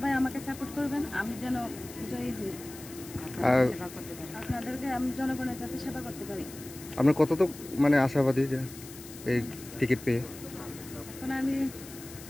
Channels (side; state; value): left; noise; hiss, 16 dB below the sound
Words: আমাকে সাপোর্ট করবেন, আমি যেন জয়ী হই, আপনাদেরকে আমি জনগণের যাতে সেবা করতে পারি। আপনি কতটুকু মানে আশাবাদী যে এই টিকিট পেয়ে? এখন আমি